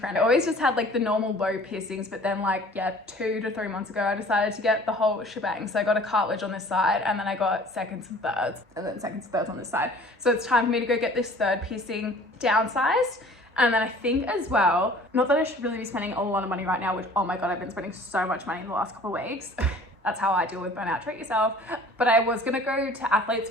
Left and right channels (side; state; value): both; normal; correlation 0.49